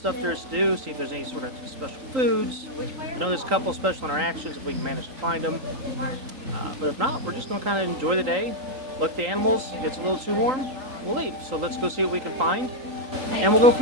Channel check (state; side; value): late; left; 3.8 ms